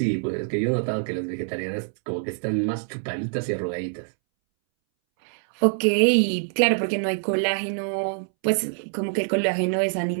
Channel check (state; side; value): silent; left; 62 dB below the other